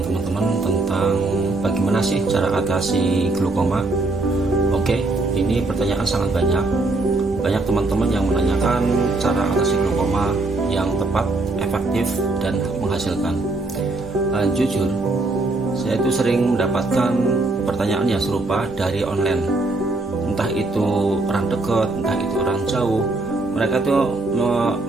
teman-teman tentang bagaimana sih cara atasi glaukoma. Oke, ini pertanyaan sangat banyak. Banyak teman-teman yang menanyakan cara atasi glaukoma yang tepat, efektif, dan menghasilkan. Jujur, saya itu sering mendapatkan pertanyaan yang serupa dari online. Entah itu orang dekat, entah itu orang jauh. Mereka itu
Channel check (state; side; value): quieter; left; 3.1 dB